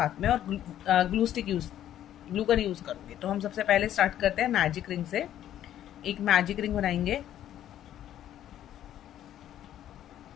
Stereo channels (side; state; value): right; quieter; 11.5 dB